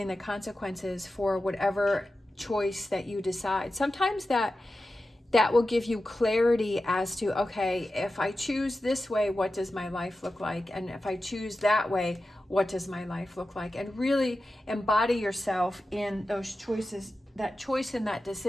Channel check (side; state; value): both; normal; correlation 0.93